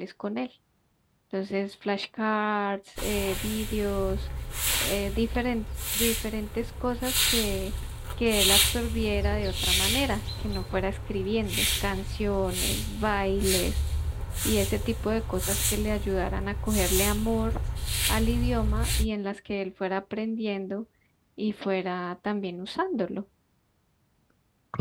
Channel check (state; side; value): identical; both; correlation 1.00